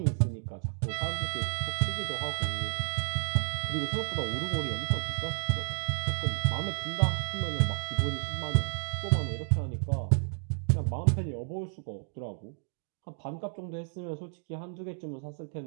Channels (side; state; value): left; silent; 57 dB below the other